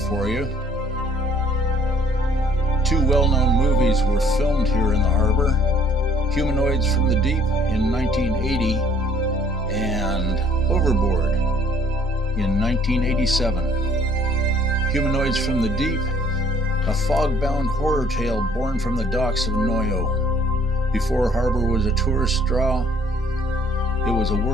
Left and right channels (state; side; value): normal; both; correlation 0.60